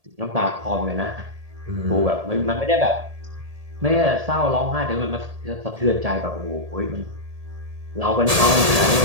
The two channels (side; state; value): left; late; 1.8 ms